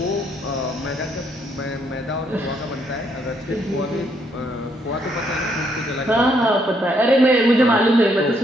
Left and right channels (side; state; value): both; normal; correlation 0.72